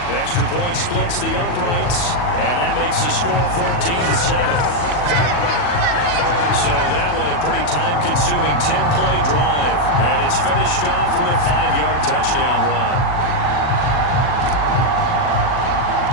The extra point splits the uprights, and that makes the score 14-7. So that one a pretty time-consuming 10-play drive, and it's finished off with a 5-yard touchdown run.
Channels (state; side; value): late; right; 40 ms